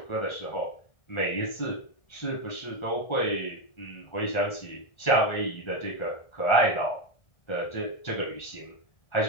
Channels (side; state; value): right; late; 1.4 ms